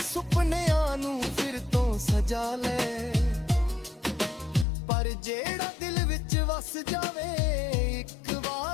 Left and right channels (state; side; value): drops out; right; at 4.7 s